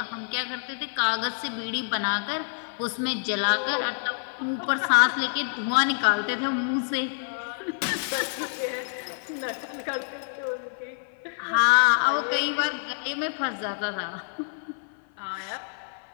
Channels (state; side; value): silent; right; 55 dB below the other